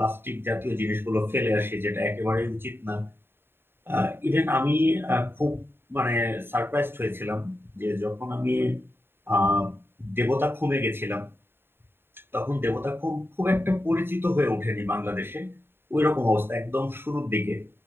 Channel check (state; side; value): late; left; 0.11 ms